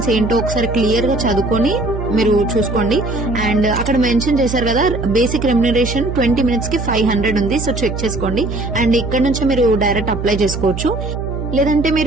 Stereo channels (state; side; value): noise; right; hum, 6 dB below the sound